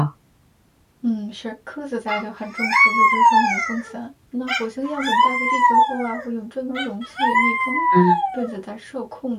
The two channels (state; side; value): identical; both; correlation 1.00